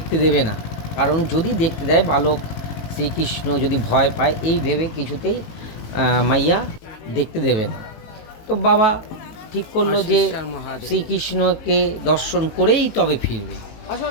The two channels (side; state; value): right; late; 18 ms